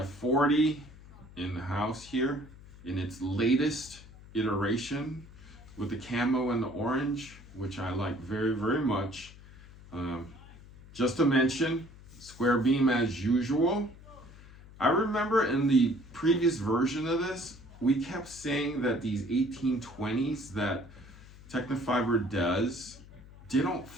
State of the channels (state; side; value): noise; left; hum, 20 dB below the sound